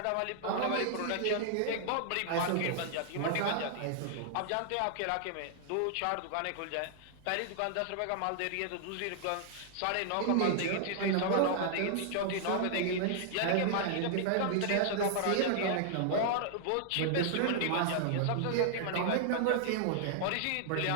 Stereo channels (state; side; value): different; both; correlation -0.01